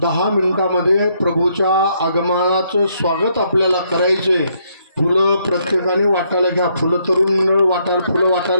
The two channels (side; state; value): both; inverted; correlation -0.73